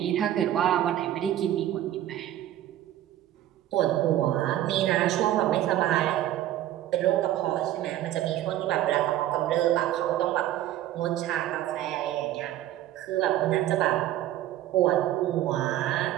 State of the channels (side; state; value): left; quieter; 13.1 dB